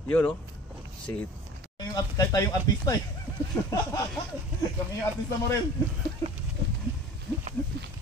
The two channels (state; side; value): normal; both; correlation 0.41